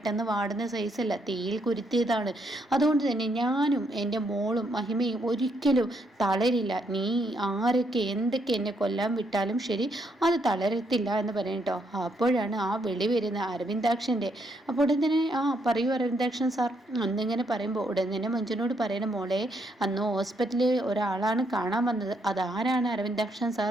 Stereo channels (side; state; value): both; normal; correlation 0.75